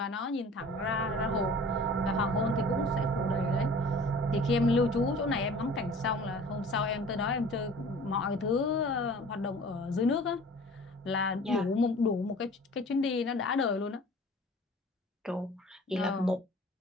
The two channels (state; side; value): normal; both; correlation 0.45